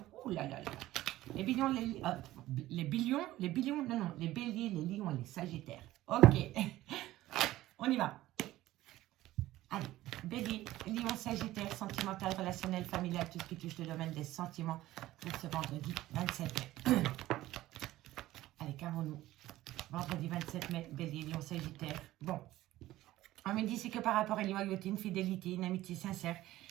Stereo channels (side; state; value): left; quieter; 15.8 dB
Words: Ouh là là là. Les béliers, les béliers, les lions et les sagittaires. Ok. On y va. Allez, bélier, lion, sagittaire, sentimental, relationnel, familial, tout ce qui touche le domaine des sentiments pour ce vendredi 27 mai. Allez, qu'avons-nous? Vendredi 27 mai, bélier, lion, sagittaire. Bon, on me dit c'est que par rapport à une loyauté, une fidélité, une amitié sincère,